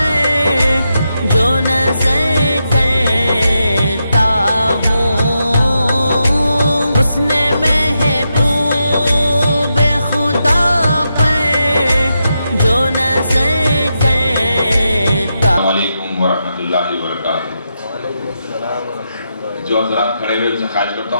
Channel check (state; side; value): inverted; both; correlation -0.85